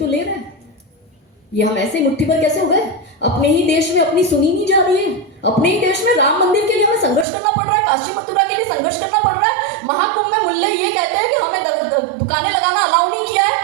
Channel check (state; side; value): drops out; left; at 7.2 s